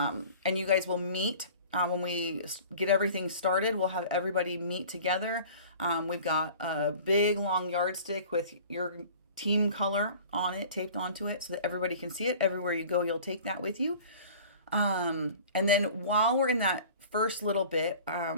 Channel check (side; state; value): both; inverted; correlation -0.45